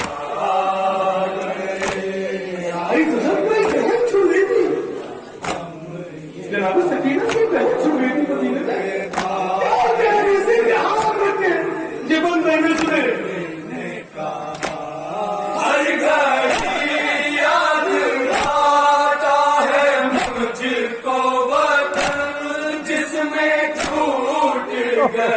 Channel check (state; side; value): identical; both; correlation 1.00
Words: आई गजब में बहन छू रही थी जनाब सकीना की बहन छू रही थी मदीने में क्या कह रही थी ध्यान रखे जीवन में सुने हर घड़ी याद आता है मुझको वतन जिसमें छूट